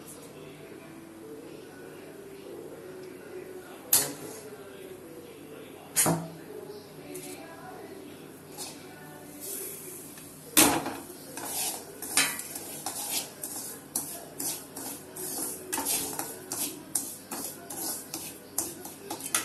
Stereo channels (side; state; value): both; identical; correlation 1.00